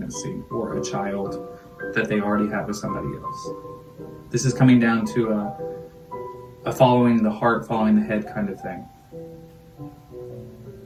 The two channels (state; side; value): identical; both; correlation 1.00